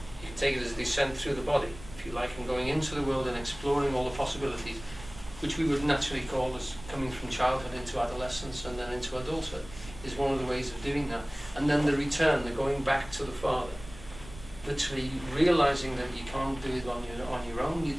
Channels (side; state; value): right; noise; rumble, 16 dB below the sound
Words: can take it as a descent through the body, if you like, and going into the world and exploring all the possibilities, which we would naturally call as coming from childhood into adolescence and then into adulthood, is one of the ways of doing that. And then the return, the going back to the Father, literally realizing that you can't do it on your own,